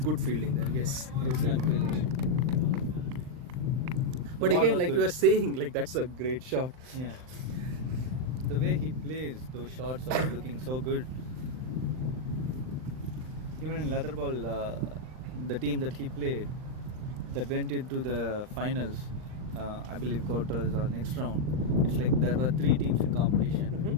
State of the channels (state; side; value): late; left; 39 ms